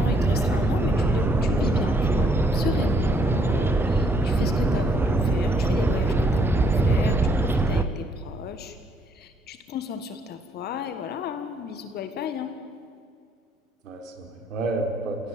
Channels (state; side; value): normal; both; correlation 0.68